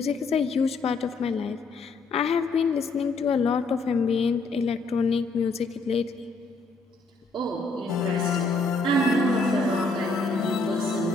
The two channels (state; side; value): quieter; right; 3.5 dB